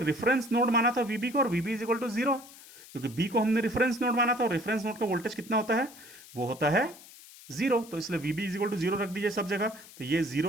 रेफरेंस नोड माना था VB को, और VB इज इक्वल टू 0, क्योंकि B को हमने रेफरेंस नोड माना था, और रेफरेंस नोड का वोल्टेज कितना होता है, वो होता है 0, तो इसलिए VB इज इक्वल टू 0 रख दीजिए सब जगह, तो ये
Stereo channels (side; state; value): left; noise; hiss, 19 dB below the sound